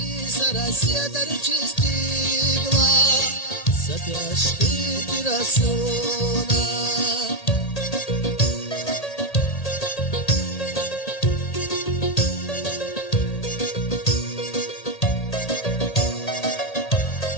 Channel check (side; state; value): right; late; 1.8 ms